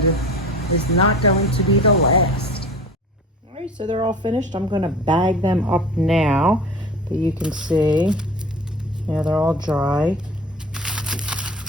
is not going to be the last. All right, so they're all finished. I'm going to bag them up now, but you can see, yeah, they're all dry.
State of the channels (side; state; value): both; normal; correlation 0.38